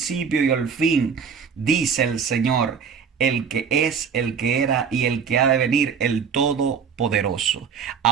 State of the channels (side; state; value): left; quieter; 6.6 dB